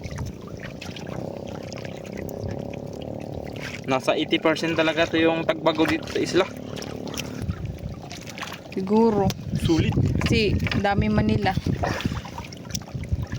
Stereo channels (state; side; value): identical; both; correlation 1.00